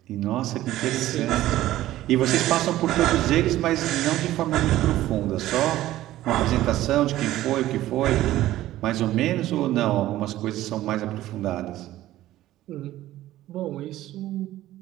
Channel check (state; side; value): quieter; left; 14.8 dB